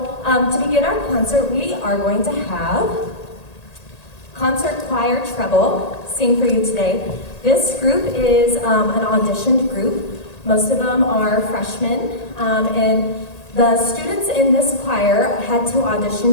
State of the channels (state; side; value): late; right; 1.8 ms